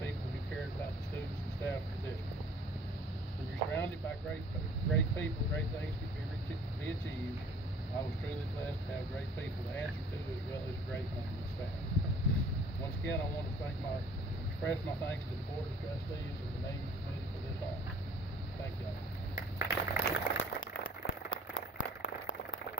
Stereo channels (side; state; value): both; normal; correlation 0.53